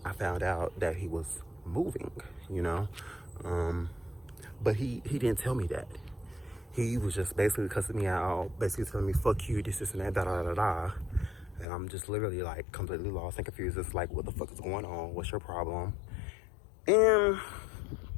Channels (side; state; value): right; drops out; at 11.7 s